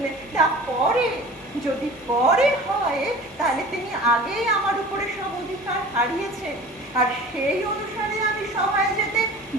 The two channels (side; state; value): left; noise; hum, 28 dB below the sound